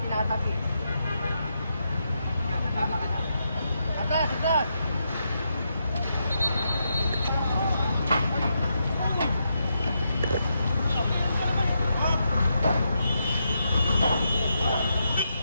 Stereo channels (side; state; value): both; inverted; correlation -0.82